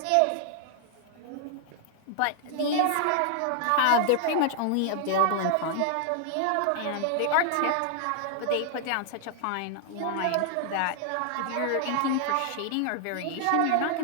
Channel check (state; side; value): different; both; correlation 0.00